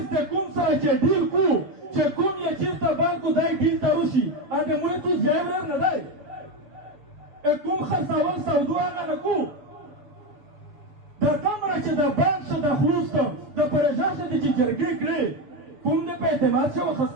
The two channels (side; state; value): left; late; 7.0 ms